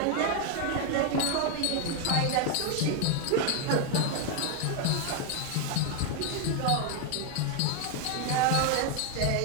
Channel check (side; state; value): both; different; correlation 0.01